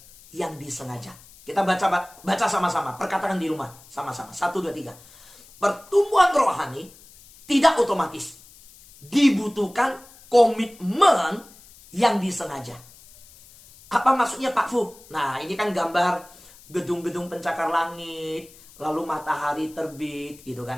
yang disengaja. Kita baca sama-sama. Perkatakan di rumah sama-sama. 1, 2, 3. Pertumbuhan rohani tidak otomatis. Dibutuhkan komitmen yang disengaja. Apa maksudnya Pak Fu? Nah ini kan gambar gedung-gedung pencakar langit. Lalu matahari terbit gitu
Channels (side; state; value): left; noise; hiss, 23 dB below the sound